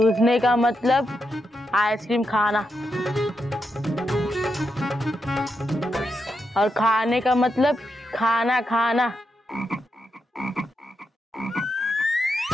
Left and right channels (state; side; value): normal; both; correlation 0.84